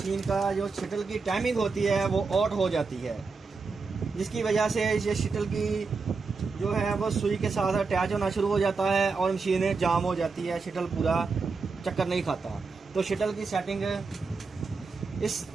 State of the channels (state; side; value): quieter; left; 4.5 dB